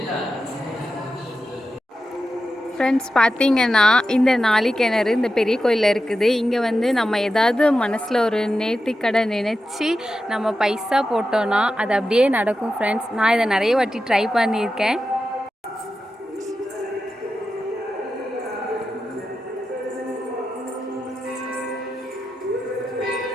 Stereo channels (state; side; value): normal; both; correlation 0.91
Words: ஃப்ரெண்ட்ஸ், பார்த்தீங்கன்னா இந்த நாளிக்கிணறு இந்த பெரிய கோயிலில் இருக்குது. இங்கே நம்ம ஏதாவது மனசில் ஒரு நேர்த்திக்கடை நினச்சி நம்ம பைசா போட்டோன்னா அது அப்படியே நடக்கும். ஃப்ரெண்ட்ஸ், நான் இதை நிறைய வாட்டி ட்ரை பண்ணியிருக்கேன்.